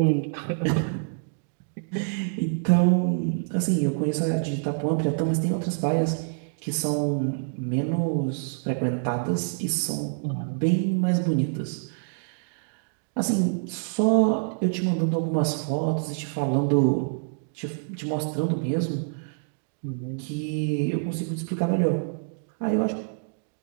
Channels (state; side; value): silent; left; digital silence